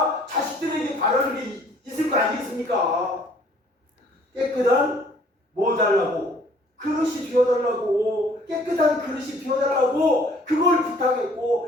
자식들에게 바라는 게 있을 거 아니겠습니까? 깨끗한 뭐 달라고? 그릇이 비워달라고. 깨끗한 그릇이 비워달라고 그걸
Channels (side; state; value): both; normal; correlation 0.57